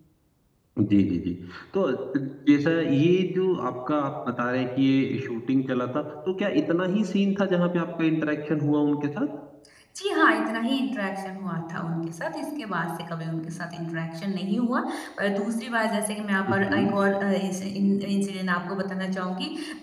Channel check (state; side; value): identical; both; correlation 1.00